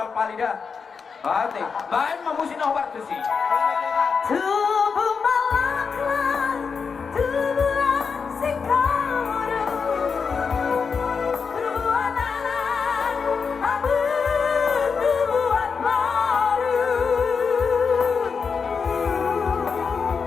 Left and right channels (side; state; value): right; quieter; 5.6 dB